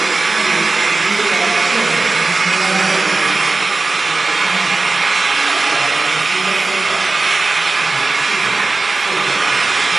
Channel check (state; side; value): quieter; left; 3.4 dB